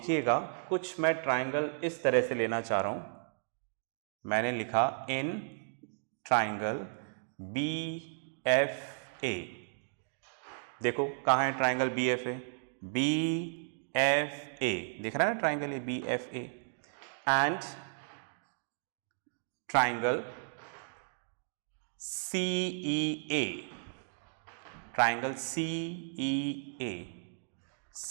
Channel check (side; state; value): left; silent; digital silence